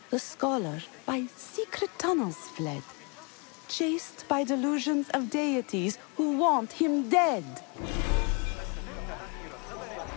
The scholar by secret tunnels fled, chased by delusions of deities who want him dead.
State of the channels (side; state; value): right; quieter; 32.7 dB